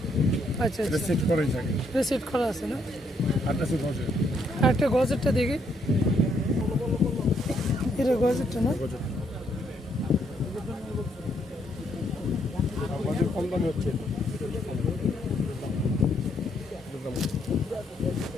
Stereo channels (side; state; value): both; normal; correlation 0.72